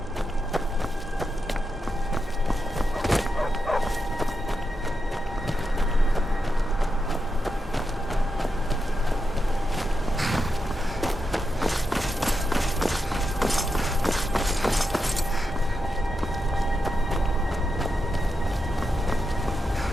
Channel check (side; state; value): both; normal; correlation 0.86